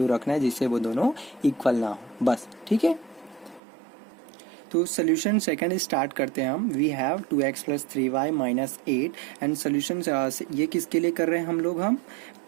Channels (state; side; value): drops out; left; at 3.6 s